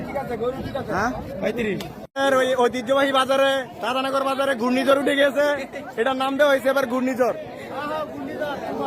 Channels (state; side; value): identical; both; correlation 1.00